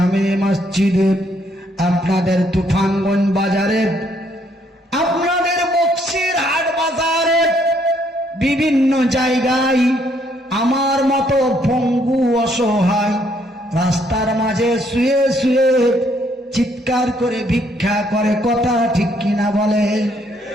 মসজিদে, আপনাদের তুফানগঞ্জ বাজারে, আপনাদের বক্সির হাট বাজারে, বিভিন্ন জায়গায় আমার মতো পঙ্গু অসহায় রাস্তার মাঝে শুয়ে শুয়ে চিৎকার করে ভিক্ষা করে, কথা ঠিক কিনা বলে?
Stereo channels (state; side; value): normal; both; correlation 0.69